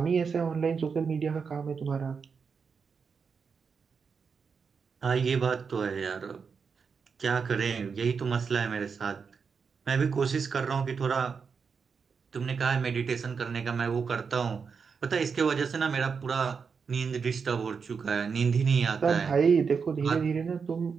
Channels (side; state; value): left; quieter; 5.7 dB